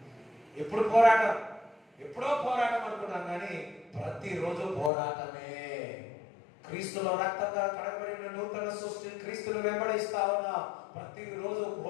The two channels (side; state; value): right; drops out; at 4.9 s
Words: ఎప్పుడు పోరాటం? ఎప్పుడో పోరాటం అనుకున్నాం, కానీ ప్రతిరోజు పోరాటమే. క్రీస్తులో రక్తంగా కడగబడిన నూతన సృష్టి క్రీస్తును వెంబడిస్తా ఉన్నా, ప్రతిరోజు